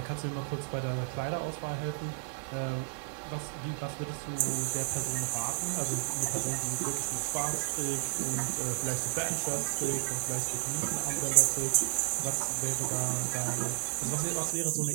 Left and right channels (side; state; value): left; silent; digital silence